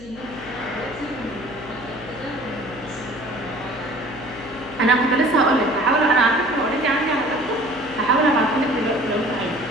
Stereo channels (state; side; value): noise; left; hum, 19 dB below the sound